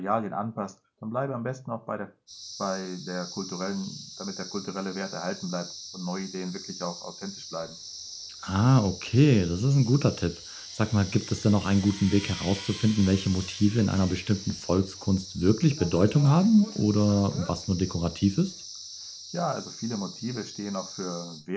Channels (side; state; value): both; identical; correlation 1.00